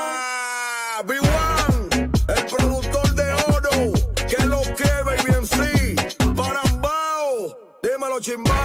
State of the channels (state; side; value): identical; both; correlation 1.00